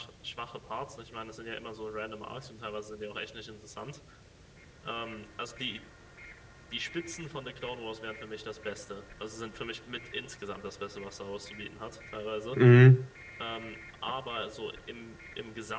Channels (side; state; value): both; identical; correlation 1.00